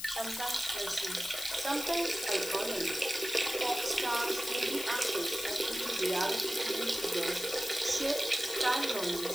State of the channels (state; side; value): noise; left; hiss, 7 dB below the sound